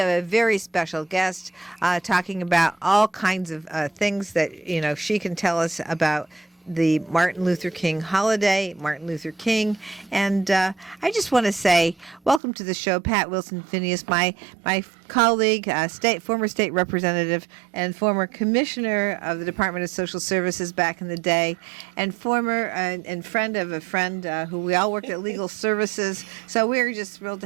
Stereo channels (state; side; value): drops out; left; at 12.4 s